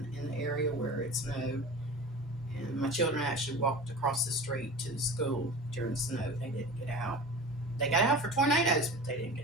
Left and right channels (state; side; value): normal; both; correlation 0.35